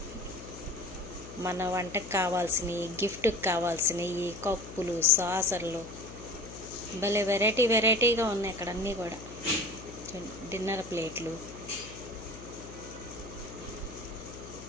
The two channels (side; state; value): left; noise; hum, 15 dB below the sound